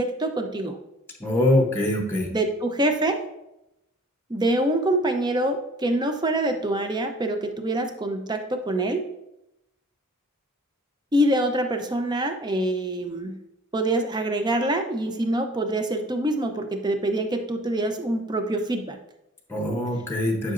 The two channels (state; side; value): normal; both; correlation 0.51